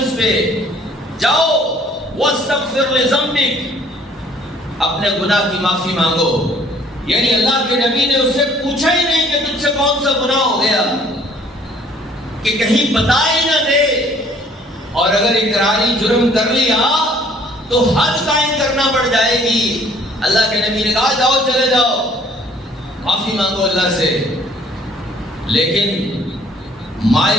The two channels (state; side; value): normal; both; correlation 0.57